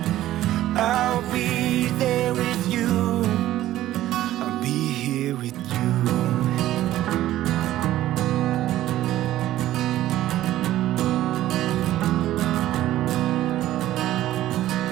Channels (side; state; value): left; quieter; 14.1 dB